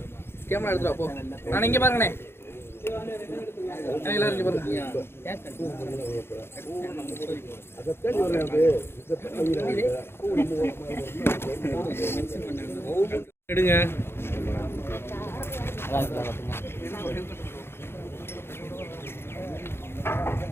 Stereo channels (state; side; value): late; right; 0.11 ms